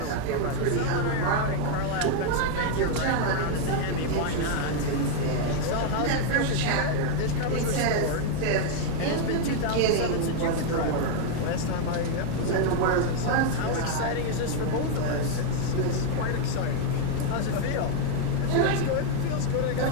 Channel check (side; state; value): both; different; correlation 0.00